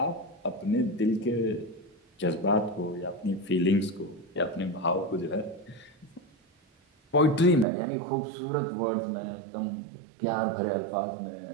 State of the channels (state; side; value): drops out; left; at 7.7 s